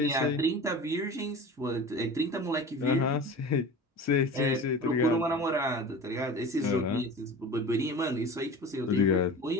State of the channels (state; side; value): normal; both; correlation 0.35